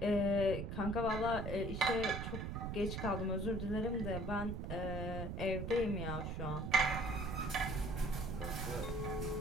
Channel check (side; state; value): right; noise; rumble, 4 dB below the sound